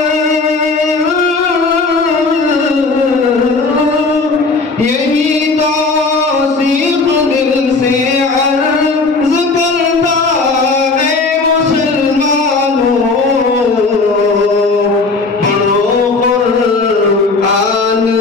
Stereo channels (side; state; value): right; quieter; 3.8 dB